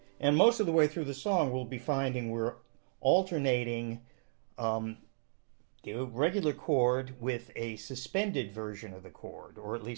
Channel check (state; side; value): silent; left; digital silence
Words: and most of the way through the song we'll be finding we're alternating the regular chord with a suspended version of the chord, or at